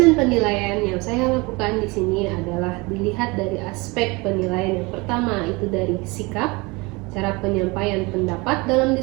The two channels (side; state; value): left; quieter; 25.6 dB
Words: penilaian yang saya lakukan di sini adalah dilihat dari aspek penilaian. Yang pertama itu dari sikap, cara penyampaian pendapat dalam